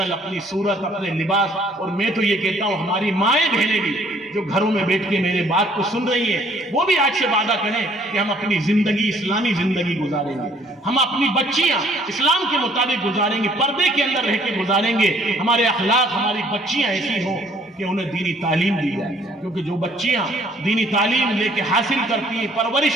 اپنی صورت، اپنے لباس، اور میں تو یہ کہتا ہوں ہماری مائیں بہنیں بھی جو گھروں میں بیٹھ کے میرے بات کو سن رہی ہیں، وہ بھی آج سے وعدہ کریں کہ ہم اپنی زندگی اسلامی زندگی گزاریں گے، ہم اپنی بچیاں اسلام کے مطابق گزاریں گے، پردے کے اندر رہ کے گزاریں گے، ہمارے اخلاق، ہماری بچیاں ایسی ہوں کہ انہیں دینی تعلیم دی جائے، کیونکہ جو بچیاں دینی تعلیم لے کے حاصل کرتی ہیں،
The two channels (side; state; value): both; normal; correlation 0.61